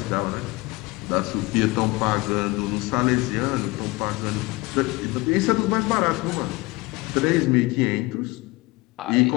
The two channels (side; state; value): right; quieter; 23.1 dB